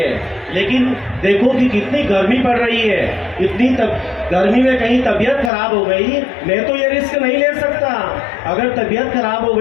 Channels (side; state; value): right; drops out; at 5.5 s